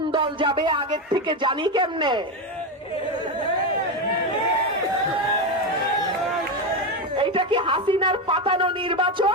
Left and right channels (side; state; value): both; normal; correlation 0.13